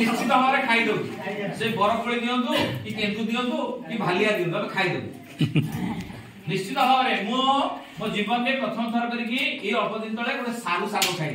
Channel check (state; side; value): identical; both; correlation 1.00